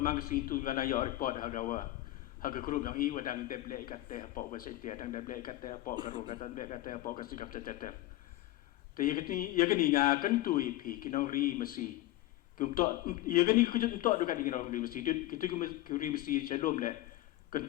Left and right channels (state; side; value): quieter; right; 16.4 dB